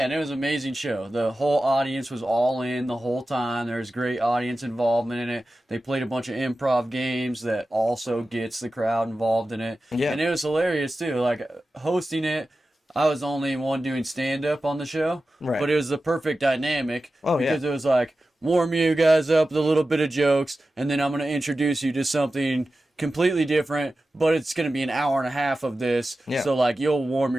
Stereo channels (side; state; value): both; normal; correlation 0.94